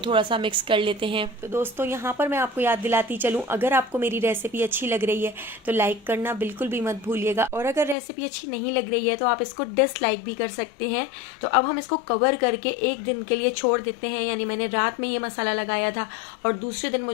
थोड़ा सा मिक्स कर लेते हैं। तो दोस्तों यहाँ पर मैं आपको याद दिलाती चलूँ, अगर आपको मेरी रेसिपी अच्छी लग रही है तो लाइक करना बिल्कुल भी मत भूलिएगा, और अगर रेसिपी अच्छी नहीं लग रही है तो आप इसको डिसलाइक भी कर सकते हैं। तो अब हम इसको कवर करके 1 दिन के लिए छोड़ देते हैं, यानी मैंने रात में ये मसाला लगाया था और दूसरे दिन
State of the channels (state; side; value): drops out; right; at 8.0 s